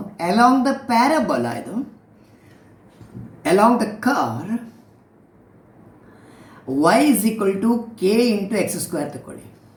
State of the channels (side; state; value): both; identical; correlation 1.00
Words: along the parabola, along the curve y is equal to k into x square.